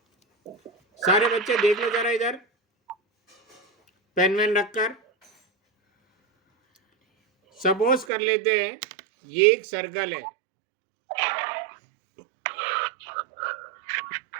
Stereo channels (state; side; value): drops out; left; at 8.1 s